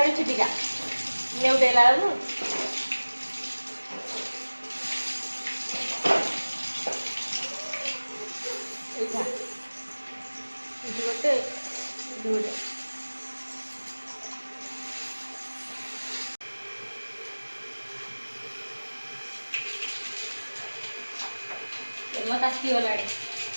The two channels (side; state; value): both; inverted; correlation -1.00